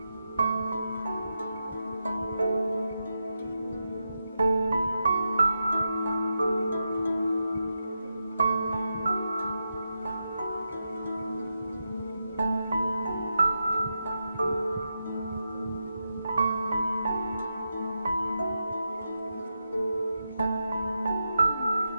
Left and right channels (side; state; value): both; inverted; correlation -0.87